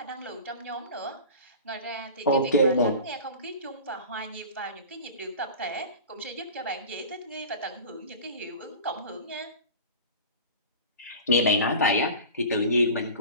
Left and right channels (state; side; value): inverted; both; correlation -0.36